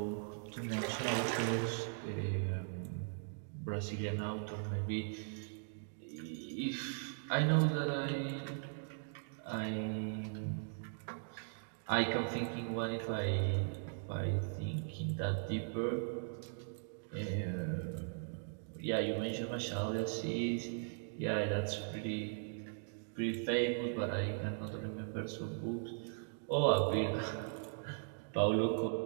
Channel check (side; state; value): left; silent; digital silence